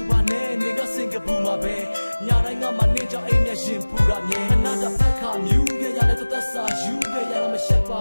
ပါနဲ့နေကစင်ကပူမှာပဲညတိုင်းငါမနေကြောင်အိမ်မျက်ရှင်ပူတာမြဲခဏတဖက်ခါမြူးခဲ့ရတဲ့သက်စာယူခဲ့ရမရှက်ပါ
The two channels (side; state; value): both; inverted; correlation -1.00